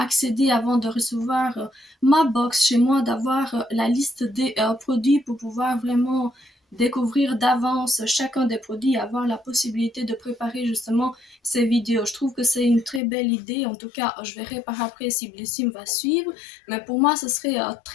avant de recevoir ma box chez moi, d'avoir la liste des produits pour pouvoir vraiment découvrir d'avance chacun des produits et avoir la possibilité de préparer justement ces vidéos. Je trouve que c'est une très belle idée. En tout cas, je verrai par après si Blissim va suivre. Mais pour moi, ce serait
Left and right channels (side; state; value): right; drops out; at 13.0 s